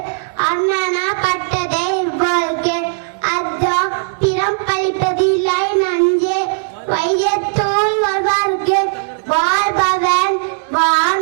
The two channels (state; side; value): silent; left; digital silence